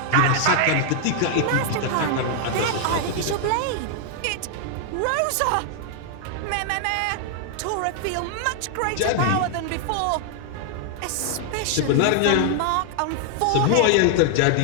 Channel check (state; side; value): different; both; correlation 0.00